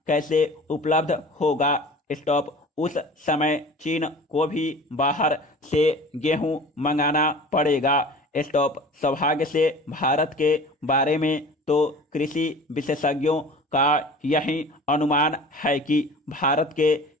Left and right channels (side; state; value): both; normal; correlation 0.41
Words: कैसे उपलब्ध होगा? स्टॉप। उस समय चीन को भी बाहर से गेहूं मंगाना पड़ेगा। स्टॉप। सौभाग्य से भारत के बारे में तो कृषि विशेषज्ञों का यही अनुमान है कि भारत के